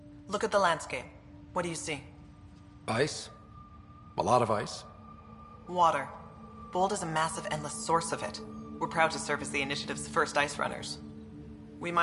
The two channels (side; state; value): both; identical; correlation 1.00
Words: Look at the landscape. What do you see? Ice? A lot of ice? Water. Bold is a massive, endless source of it. We're proud to serve as the initiative's first ice runners. We